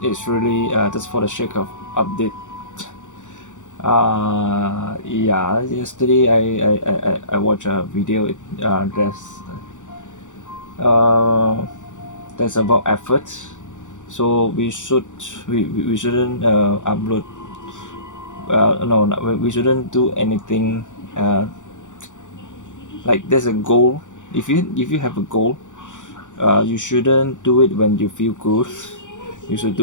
really just for the sake of update. Yeah, yesterday I watched a video. Uh, that's about effort. So we shouldn't upload. No, we shouldn't do anything. Uh, like there's a goal. If you have a goal, you shouldn't do it when you feel good. You should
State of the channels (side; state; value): right; late; 0.86 ms